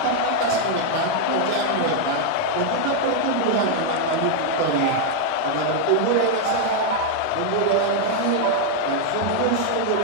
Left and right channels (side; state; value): both; different; correlation 0.00